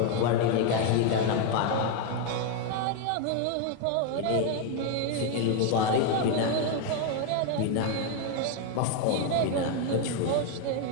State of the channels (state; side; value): different; both; correlation 0.01